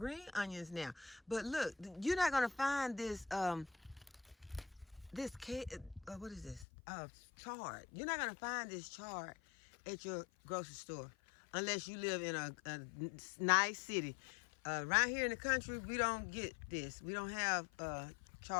onions now. But look, you're not gonna find this what is this? Chard. You're not gonna find this chard at your grocery store unless you live in a nice city. Around here in the country, we don't get this. We don't have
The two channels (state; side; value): drops out; right; at 6.7 s